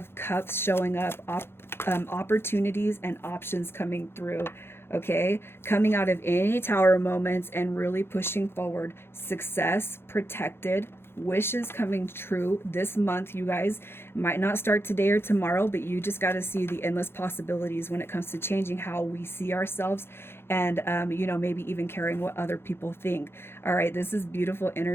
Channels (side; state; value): right; late; 0.11 ms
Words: Cups showing up, opportunities and options coming through. Okay, coming out of any tower moments and really pushing forward. Success, protected, wishes coming true this month. You guys might not start today or tomorrow, but you just got to see the endless possibilities when it comes to changing how we see ourselves, and maybe even caring what other people think. All right, this is beautiful